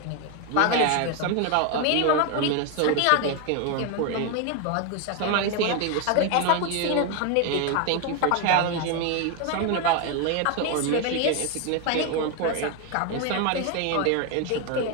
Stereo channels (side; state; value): both; different; correlation 0.01